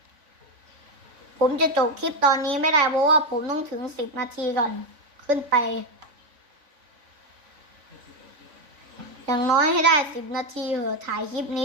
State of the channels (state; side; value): late; left; 3.5 ms